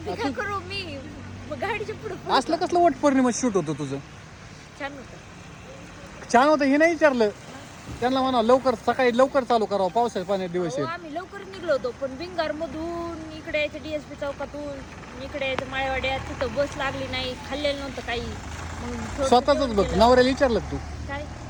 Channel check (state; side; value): identical; both; correlation 1.00